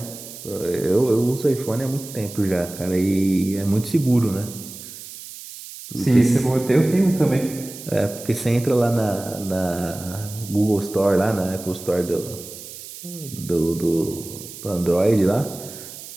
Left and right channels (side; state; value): right; noise; hiss, 14 dB below the sound